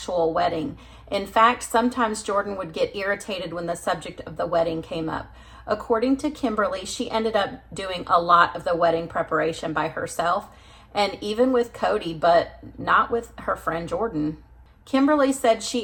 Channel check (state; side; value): identical; both; correlation 1.00